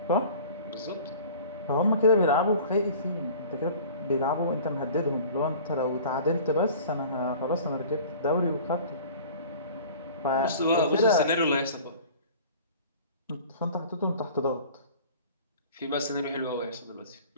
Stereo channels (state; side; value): inverted; both; correlation -0.44